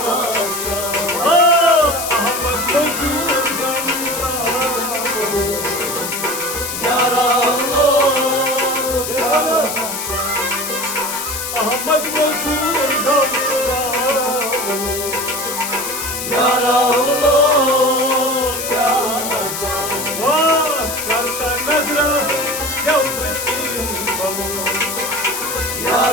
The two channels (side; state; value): left; noise; hiss, 5 dB below the sound